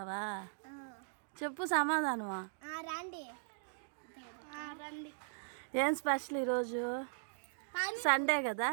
చెప్పు సమాధానమా? రండి రండి. ఏం స్పెషల్ ఈరోజు? సండే కదా,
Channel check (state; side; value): silent; left; digital silence